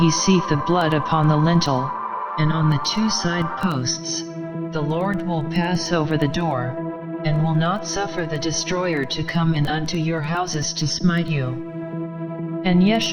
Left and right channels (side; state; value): both; identical; correlation 1.00